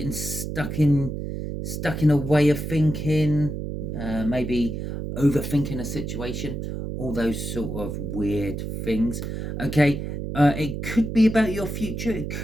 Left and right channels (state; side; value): noise; right; hum, 5 dB below the sound